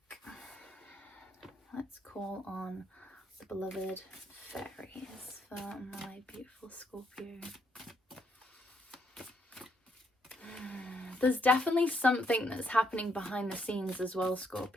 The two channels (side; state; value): both; normal; correlation 0.74